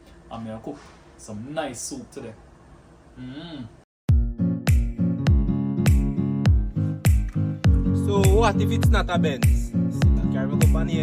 I'm gonna cook some nice soup today. So what if it's not a Benz? Still carry my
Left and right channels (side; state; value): both; identical; correlation 1.00